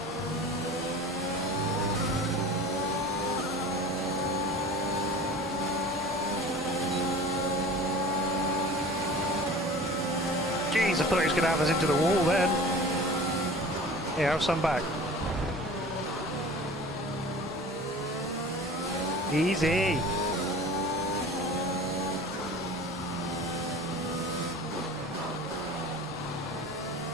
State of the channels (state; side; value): normal; both; correlation 0.40